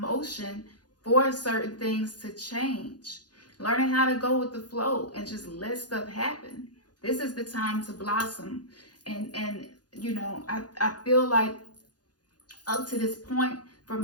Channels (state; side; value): late; right; 0.69 ms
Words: for certain things to change. Learning how to go with the flow and just let stuff happen. This is the time to blossom. And you know, I feel like up to this point, for